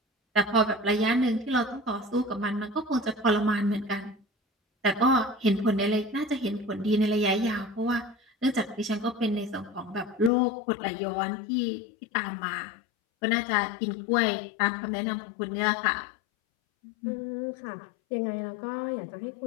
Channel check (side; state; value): right; drops out; at 10.3 s